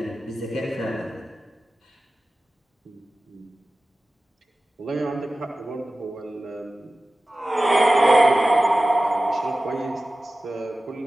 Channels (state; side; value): normal; both; correlation 0.96